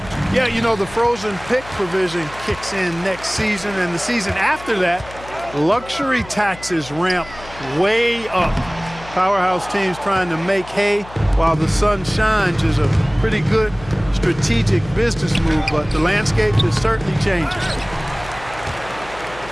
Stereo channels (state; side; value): noise; left; hum, 17 dB below the sound